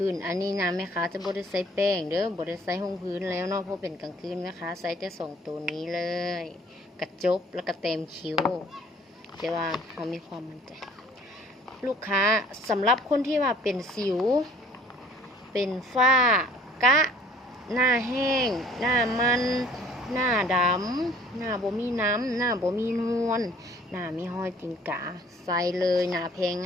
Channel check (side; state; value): both; normal; correlation 0.54